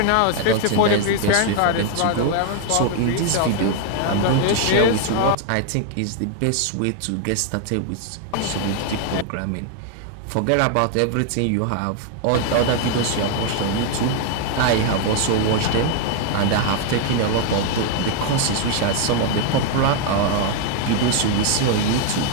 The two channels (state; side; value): different; both; correlation 0.00